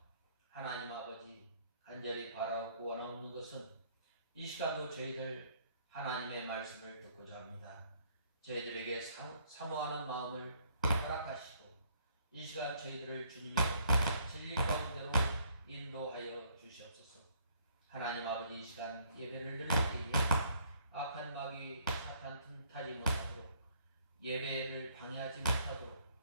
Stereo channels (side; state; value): both; inverted; correlation -0.65